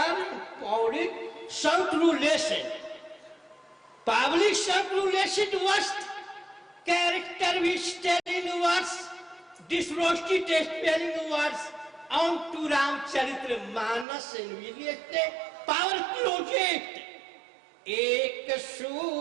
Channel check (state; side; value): drops out; left; at 14.1 s